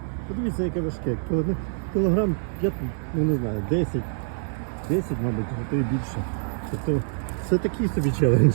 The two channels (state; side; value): silent; left; 56 dB below the other